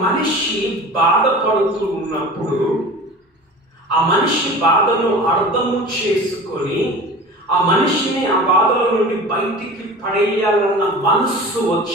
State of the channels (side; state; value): both; normal; correlation 0.37